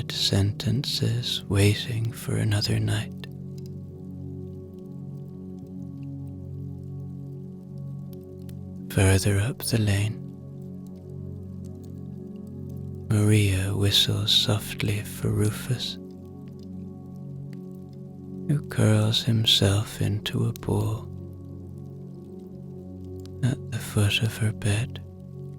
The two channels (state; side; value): identical; both; correlation 1.00